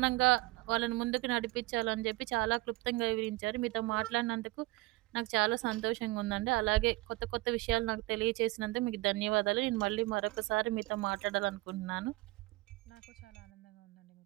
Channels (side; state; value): left; quieter; 21.1 dB